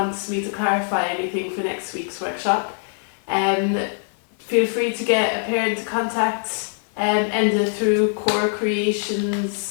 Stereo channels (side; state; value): right; silent; 64 dB below the other